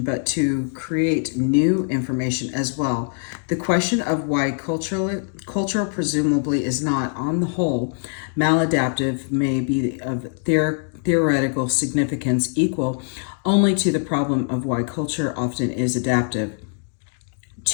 but to create new information as well. The question of why cultural presumably is not, on the whole, maladaptive may be of theoretical significance equal only to the problem of why culture often is adaptive.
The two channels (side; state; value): right; silent; digital silence